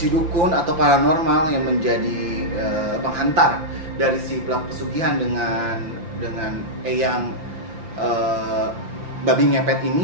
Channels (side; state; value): left; late; 5.8 ms